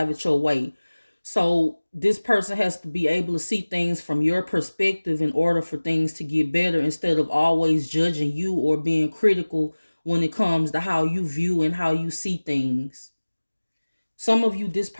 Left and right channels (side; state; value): both; inverted; correlation -1.00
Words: it your way. So this person has to be able to see things from your perspective in order for things to get better, instead of always judging you or being critical when it comes to how you view and how you see things. Some of you, this